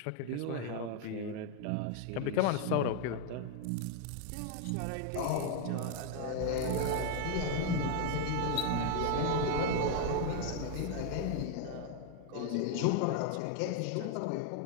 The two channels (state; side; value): different; both; correlation 0.00